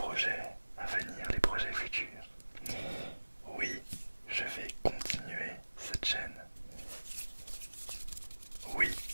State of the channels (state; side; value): inverted; both; correlation -1.00